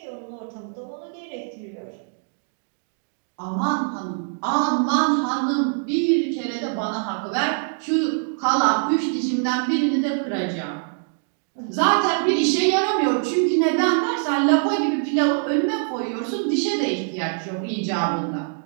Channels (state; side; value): silent; left; digital silence